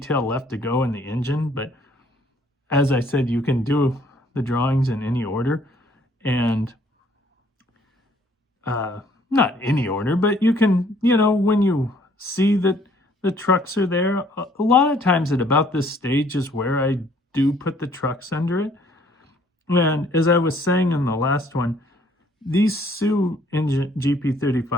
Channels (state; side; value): normal; both; correlation 0.61